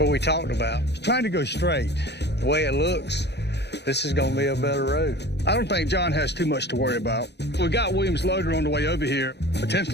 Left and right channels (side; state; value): right; late; 0.50 ms